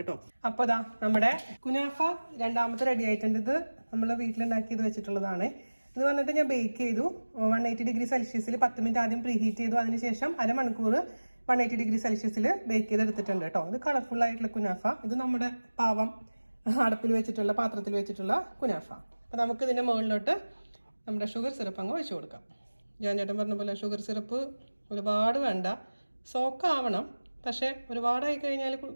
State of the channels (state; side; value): inverted; both; correlation -1.00